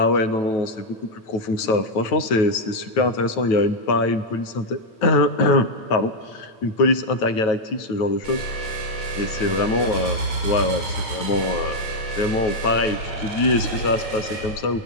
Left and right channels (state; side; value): late; right; 9.3 ms